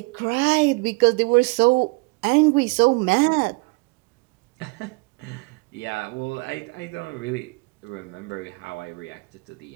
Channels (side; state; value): left; quieter; 28.0 dB